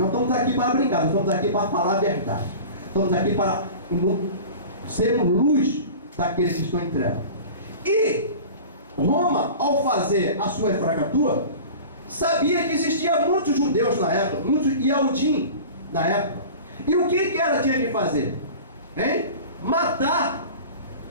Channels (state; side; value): inverted; both; correlation -0.37